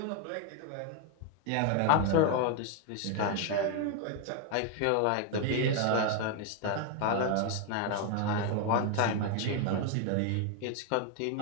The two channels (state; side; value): different; both; correlation 0.01